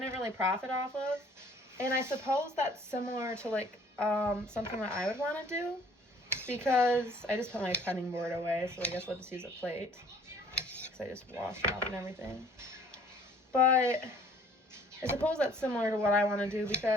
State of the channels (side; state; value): both; normal; correlation 0.55